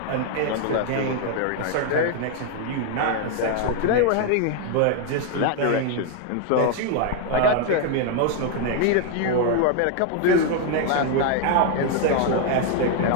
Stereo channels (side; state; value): both; different; correlation 0.00